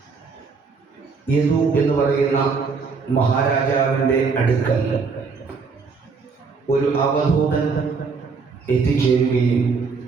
യദു എന്ന് പറയുന്ന മഹാരാജാവിൻ്റെ അടുക്കൽ ഒരു അവധൂതൻ എത്തിച്ചേരുകയും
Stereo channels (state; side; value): quieter; left; 4.9 dB